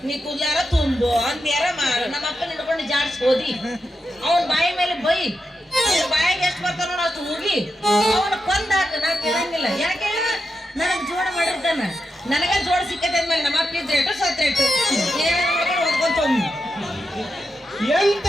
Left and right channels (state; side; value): normal; both; correlation 0.87